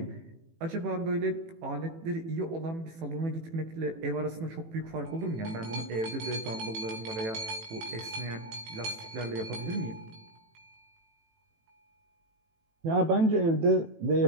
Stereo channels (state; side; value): late; left; 18 ms